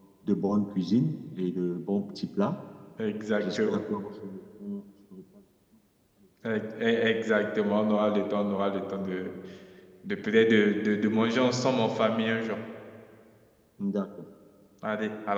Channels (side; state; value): both; identical; correlation 1.00